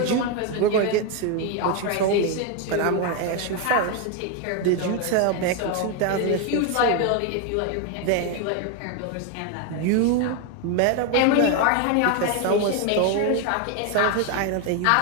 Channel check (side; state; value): both; different; correlation 0.01